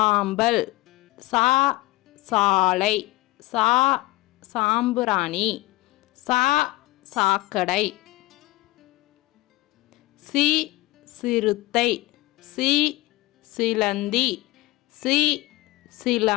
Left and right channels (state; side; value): quieter; right; 19.7 dB